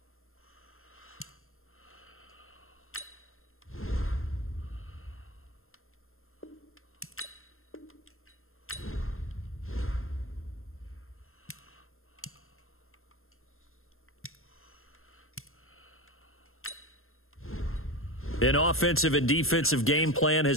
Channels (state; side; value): late; right; 0.61 ms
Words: An offensive and defensive game plan